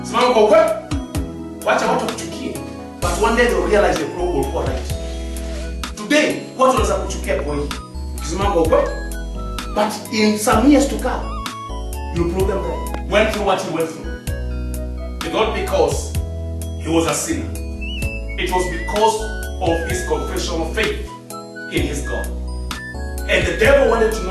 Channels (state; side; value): identical; both; correlation 1.00